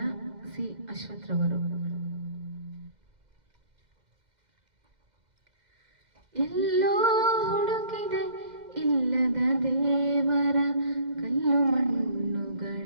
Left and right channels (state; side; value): late; left; 2.1 ms